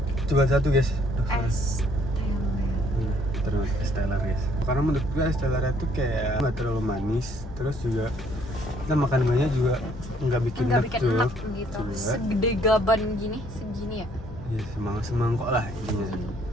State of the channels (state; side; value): normal; both; correlation 0.64